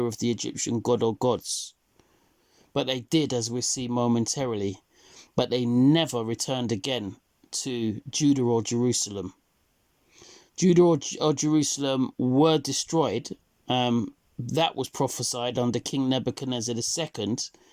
of the Egyptian god or gods. But they did, as we see momentarily. But they never returned again to Judah or Jerusalem. Judah or Jerusalem were destroyed. That was prophesied under King Nebuchadnezzar II,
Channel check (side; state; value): both; identical; correlation 1.00